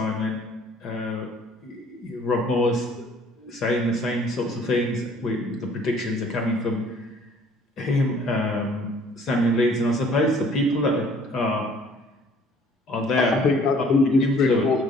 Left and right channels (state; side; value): normal; both; correlation 0.57